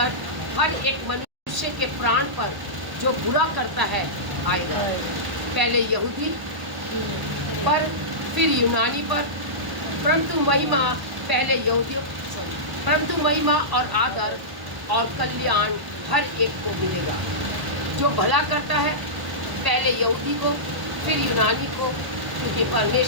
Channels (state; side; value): late; left; 1.0 ms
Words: हर एक मनुष्य के प्राण पर जो बुरा करता है आएगा। पहले यहूदी पर, फिर यूनानी पर, परंतु महिमा और आदर और कल्याण हर एक को मिलेगा। जो भला करता है पहले यहूदी को, फिर यूनानी को, क्योंकि